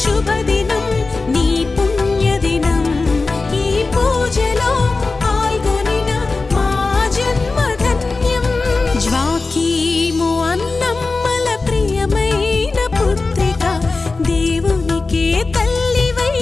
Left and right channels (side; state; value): right; quieter; 3.8 dB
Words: శుభదినం, నీ పుణ్యదినం. ఈ పూజలో పాల్గొనిన మా జన్మధన్యం. జ్వాకీ